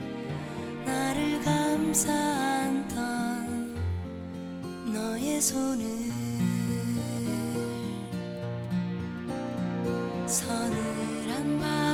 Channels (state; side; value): identical; both; correlation 1.00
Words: 감싸 안던 너의 손을 서늘한